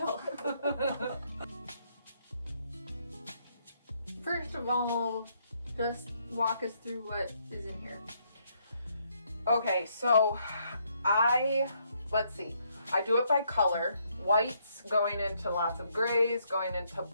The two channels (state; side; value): inverted; both; correlation -0.72